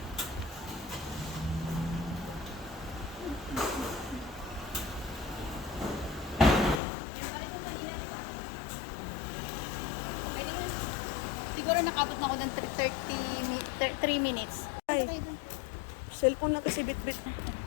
Siguro nakabot na ako ng 3 minutes. Ay, cellphone na kasi bit-bit.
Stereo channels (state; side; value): drops out; right; at 6.8 s